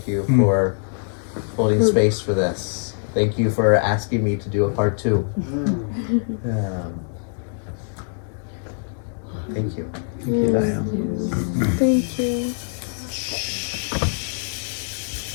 you for holding space for this. Thank you for asking me to do a part 2. Thank you. Thank you, Dyon. Thank you.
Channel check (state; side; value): silent; right; 63 dB below the other